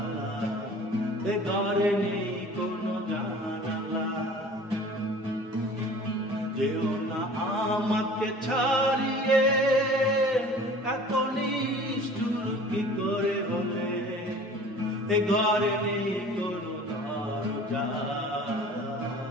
এ ঘরে নেই কোনো জানালা। যেও না আমাকে ছাড়িয়ে, এত নিষ্ঠুর কি করে হলে। এ ঘরে নেই কোনো দরজা,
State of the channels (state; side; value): normal; both; correlation 0.45